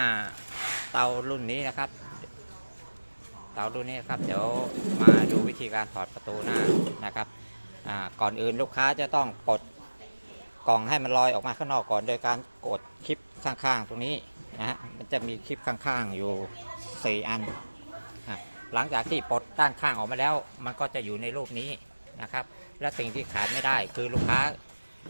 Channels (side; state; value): both; inverted; correlation -1.00